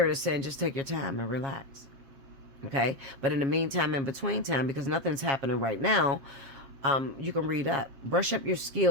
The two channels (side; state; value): left; late; 7.3 ms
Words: is saying, just take your time and relax. Okay. But in the meantime, in between time, because nothing's happening right now, you can read up, brush up your